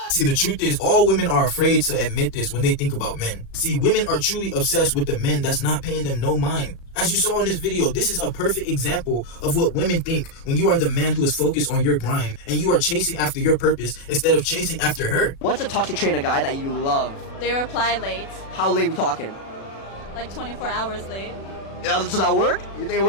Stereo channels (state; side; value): late; right; 36 ms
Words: See, the truth is, all women are afraid to admit this when they think about men. See, women are truly obsessed with the men that's not paying them no mind. As you saw in this video, this is a perfect example of what women think when you are the man who is focused on your grind and you are chasing after your purpose instead of chasing after her. What's a toxic trait in a guy that you love? They reply late. How late we talking? Like 24 hours late. Yeah, does that work? You think it